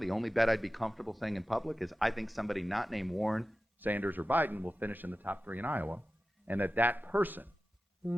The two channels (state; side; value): normal; both; correlation 0.94